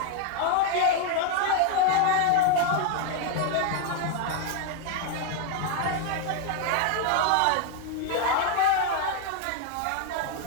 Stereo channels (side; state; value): both; different; correlation 0.01